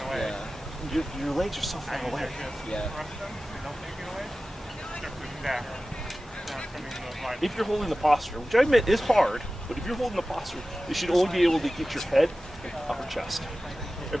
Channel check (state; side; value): normal; both; correlation 0.95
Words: Yeah. your legs are so far away. Yeah. If you're holding the posture, which I admit is hard, but if you're holding the posture, you should only be able to get your head and upper chest.